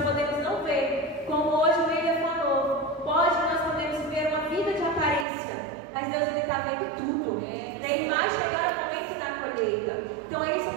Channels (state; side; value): drops out; left; at 5.2 s